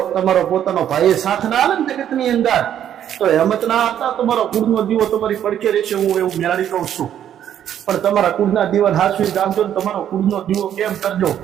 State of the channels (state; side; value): quieter; left; 10.2 dB